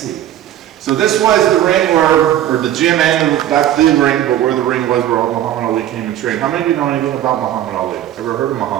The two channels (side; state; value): left; quieter; 11.9 dB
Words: So this was the ring where, or the gym and not the ring, but where the ring was where Muhammad Ali came and trained. How many of you know anything about Muhammad Ali? Ever heard of